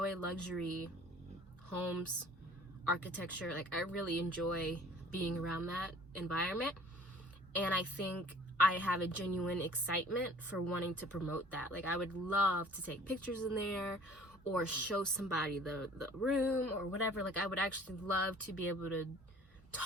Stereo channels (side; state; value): both; normal; correlation 0.50